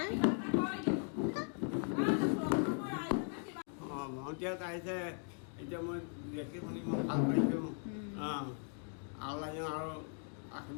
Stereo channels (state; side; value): silent; right; 52 dB below the other